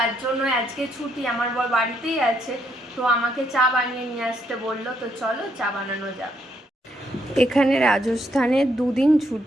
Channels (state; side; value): normal; both; correlation 0.74